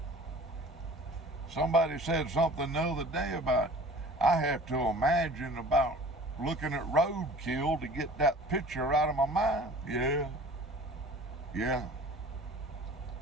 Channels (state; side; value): normal; both; correlation 0.45